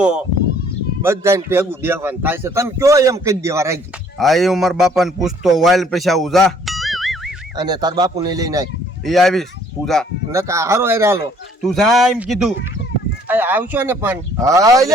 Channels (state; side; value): normal; both; correlation 0.60